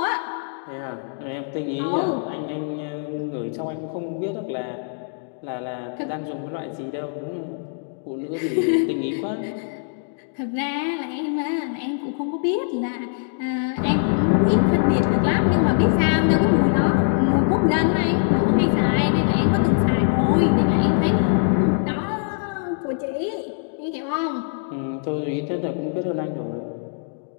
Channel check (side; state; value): right; silent; digital silence